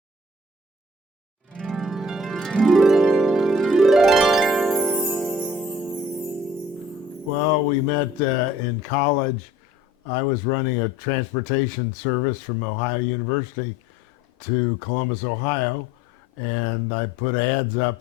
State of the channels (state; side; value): normal; both; correlation 0.52